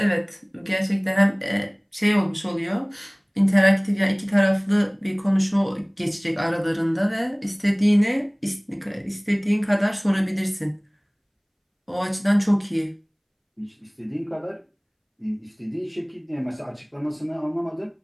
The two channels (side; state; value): both; identical; correlation 1.00